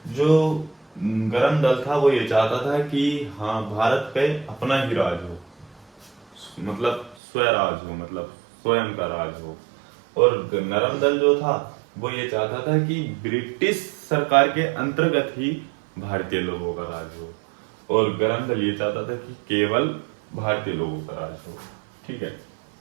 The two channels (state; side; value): drops out; left; at 7.2 s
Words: जो गरम दल था वो ये चाहता था कि हाँ भारत पे अपना ही राज हो, मतलब स्वराज हो, मतलब स्वयं का राज हो। और नरम दल जो था वो ये चाहता था कि ब्रिटिश सरकार के अंतर्गत ही भारतीय लोगों का राज हो। और गरम दल ये चाहता था कि केवल भारतीय लोगों का राज हो। ठीक है,